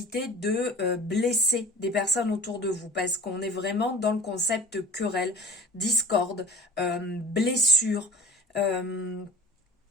de blesser des personnes autour de vous. Parce qu'on est vraiment dans le concept querelle, discorde, blessure,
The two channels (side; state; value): both; normal; correlation 0.42